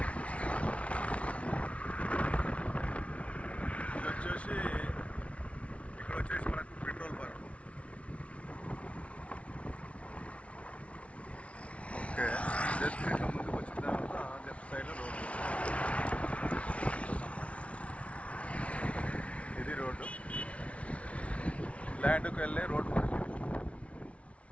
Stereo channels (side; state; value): right; late; 0.063 ms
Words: ఇక్కడ వచ్చేసి మనకు పెట్రోల్ బంక్. ఓకే, జస్ట్ ఇట్లా ముందుకు వచ్చిన తర్వాత లెఫ్ట్ సైడ్లో రోడ్డు. ఇది రోడ్డు, ల్యాండ్కి వెళ్ళే రోడ్డు మనకి.